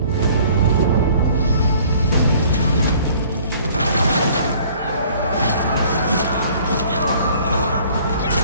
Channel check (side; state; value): both; inverted; correlation -0.54